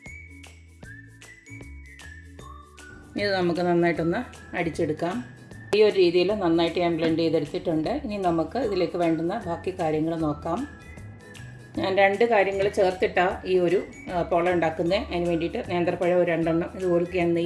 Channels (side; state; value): both; identical; correlation 1.00